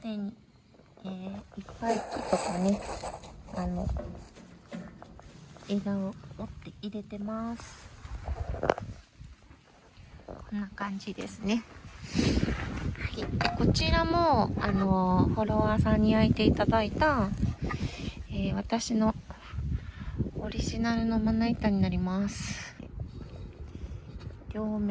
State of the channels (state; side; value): identical; both; correlation 1.00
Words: に、いっぱい木とかね、枝を折って入れてます。こんな感じですね。はい。でこちらも、フォロワーさんに焼いていただいた、私のオリジナルのまな板になります。両